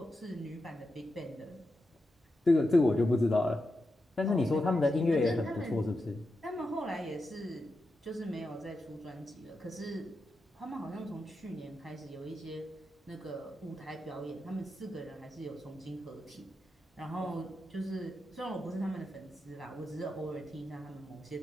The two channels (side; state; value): both; normal; correlation 0.88